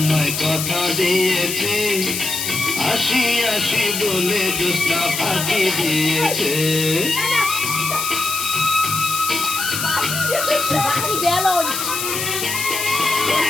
কথা দিয়েছে, আসি আসি বলে জ্যোৎস্না ফাঁকি দিয়েছে।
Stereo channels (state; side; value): noise; left; hiss, 3 dB below the sound